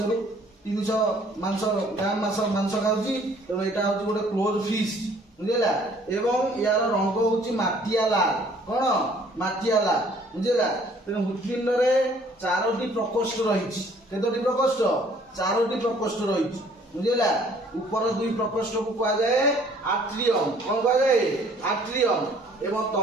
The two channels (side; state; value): both; normal; correlation 0.58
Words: रु 300 मांस ग्राम मांस खाऊँ तेणु यहाँ हूँ गोटे क्लोज फिस्ट बुझेगा। एवं यार रंग हूँ माटिया लाल कौन माटिया लाल बुझेगा। तेणु हृदपिंड चारोटी प्रकोष्ठ रही केतोटी प्रकोष्ठ 4टी प्रकोष्ठ रही बुझेगा। ऊपर 2 प्रकोष्ठ को कहुए आट्रियम कौन कहुए आट्रियम एवं